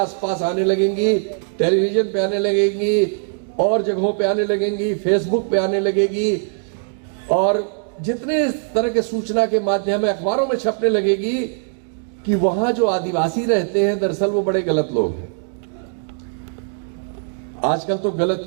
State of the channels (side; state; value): left; silent; digital silence